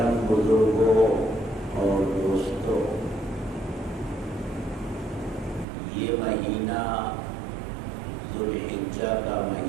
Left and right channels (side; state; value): left; drops out; at 5.7 s